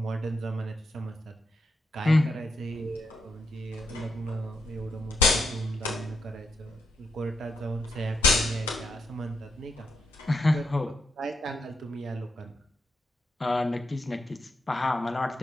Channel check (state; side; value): normal; both; correlation 0.81